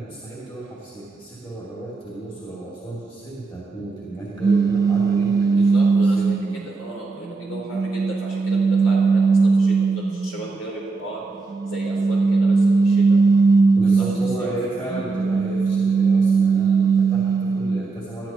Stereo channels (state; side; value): quieter; left; 4.1 dB